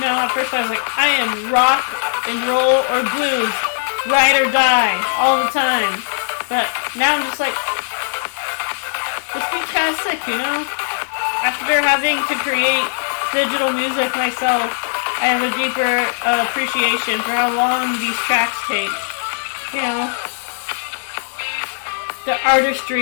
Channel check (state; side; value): silent; right; 61 dB below the other